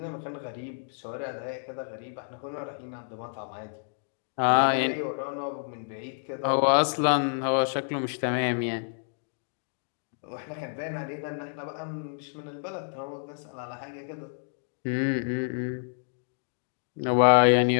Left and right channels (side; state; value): right; silent; digital silence